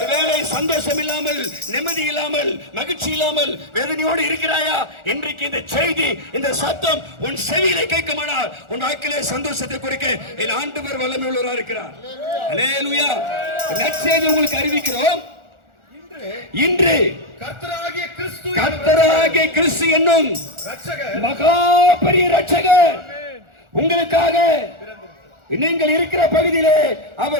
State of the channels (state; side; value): late; left; 1.4 ms